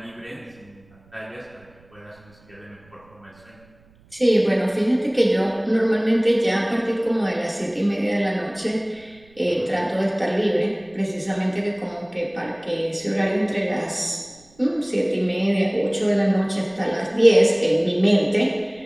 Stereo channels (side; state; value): right; noise; rumble, 29 dB below the sound